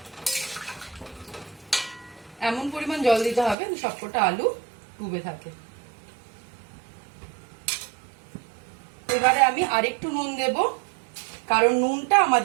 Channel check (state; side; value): drops out; left; at 3.6 s